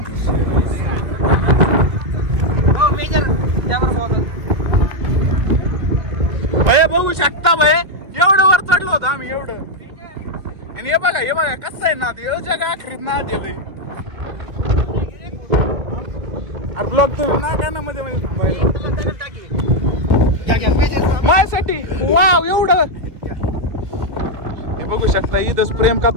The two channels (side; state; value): left; late; 2.0 ms